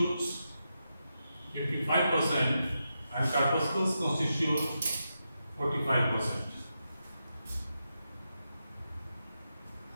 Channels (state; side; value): inverted; both; correlation -0.87